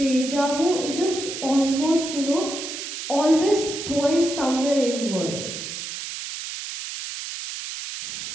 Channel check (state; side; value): noise; right; hiss, 7 dB below the sound